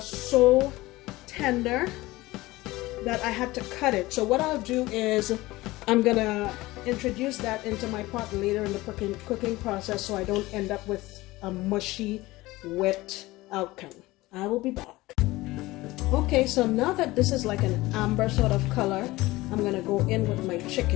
so tender that I had to cut it. So what I'll do is I'm gonna introduce that into my pot later in the cooking process so I don't end up with a mushy, wet outcome. I will be back. Okay, so now that this is like an amber sort of color, I'm gonna go in with my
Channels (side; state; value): right; quieter; 19.3 dB